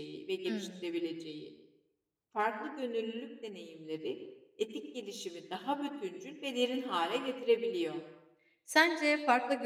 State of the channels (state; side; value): identical; both; correlation 1.00